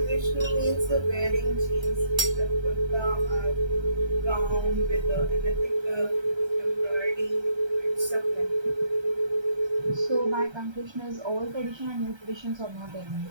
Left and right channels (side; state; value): left; late; 1.3 ms